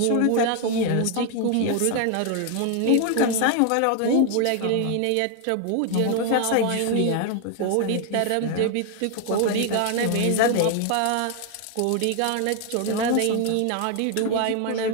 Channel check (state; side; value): different; both; correlation 0.01